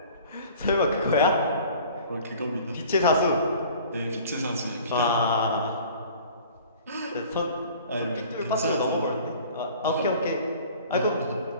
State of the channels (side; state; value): both; inverted; correlation -0.47